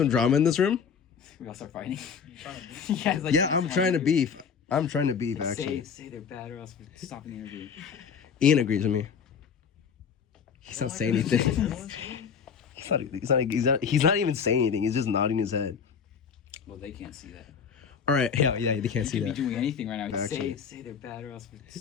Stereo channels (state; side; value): quieter; right; 6.7 dB